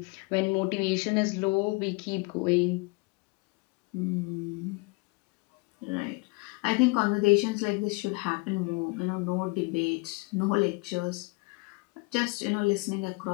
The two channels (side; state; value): right; quieter; 27.3 dB